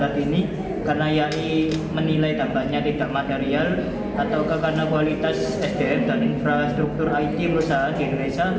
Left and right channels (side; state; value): both; identical; correlation 1.00